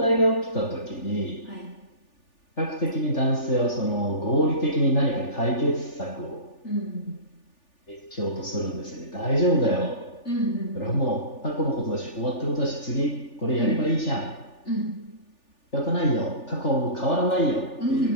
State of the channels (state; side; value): late; right; 3.4 ms